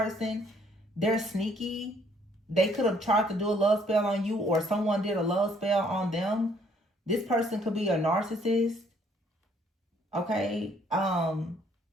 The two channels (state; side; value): normal; both; correlation 0.64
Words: They're sneaky. They could have tried to do a love spell on you or someone did a love spell on them. This person could be a narcissist. Okay.